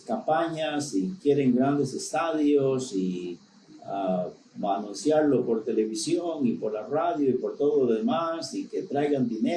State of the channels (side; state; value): both; identical; correlation 1.00